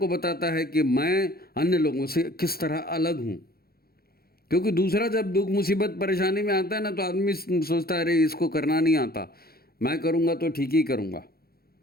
बताता है कि मैं अन्य लोगों से किस तरह अलग हूँ। क्योंकि दूसरा जब दुख मुसीबत परेशानी में आता है ना, तो आदमी सोचता है अरे इसको करना नहीं आता, मैं करूँगा तो ठीक ही करूँगा,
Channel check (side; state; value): right; late; 0.44 ms